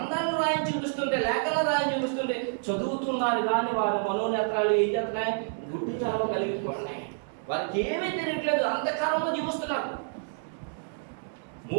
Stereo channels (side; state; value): left; silent; digital silence